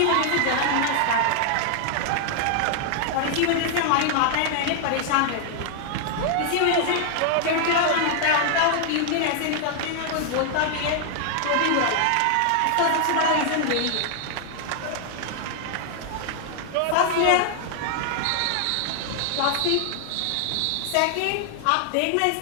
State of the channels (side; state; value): both; different; correlation 0.00